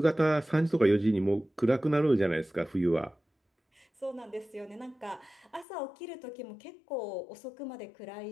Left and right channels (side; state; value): right; drops out; at 5.7 s